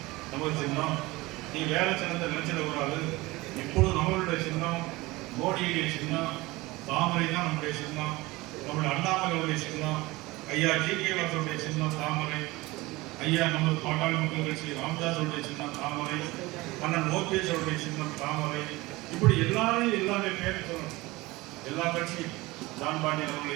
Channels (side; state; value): left; quieter; 21.0 dB